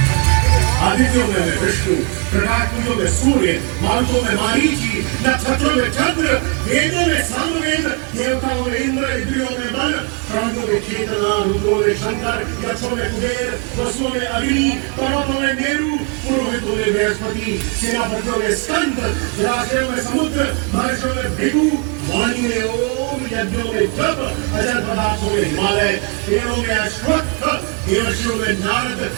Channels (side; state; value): left; quieter; 35.3 dB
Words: आदित्यों में मैं विष्णु, प्रकाश पुंजों में सूर्य, मारुतों में मारीची, नक्षत्रों में चंद्र, वेदों में सामवेद, देवताओं में इंद्र, इंद्रियों में मन, प्राणों में चेतना, रुद्रों में शंकर, यक्षों में कुबेर, वसुओं में अग्नि, पर्वतों में मेरु, पुरोहितों में बृहस्पति, सेनापतियों में स्कंद, जलाशयों में समुद्र, महर्षियों में भृगु, वाणी में ओम, यज्ञों में जप, अजर पदार्थों में हिमालय, पेड़ों में अश्वत्थ, देवर्षियों में नारद,